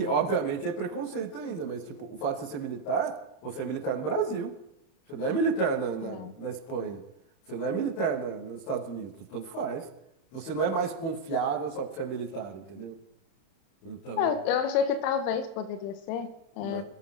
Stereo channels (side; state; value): right; late; 31 ms